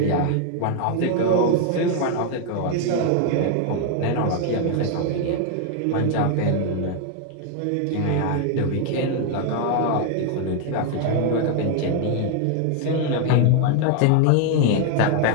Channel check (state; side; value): different; both; correlation 0.01